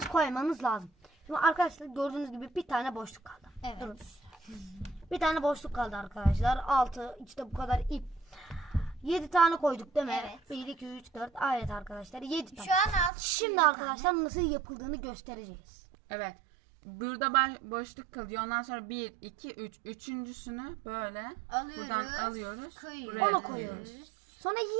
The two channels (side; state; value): left; drops out; at 13.1 s